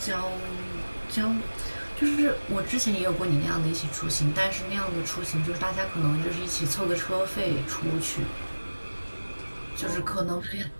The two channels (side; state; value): both; inverted; correlation -1.00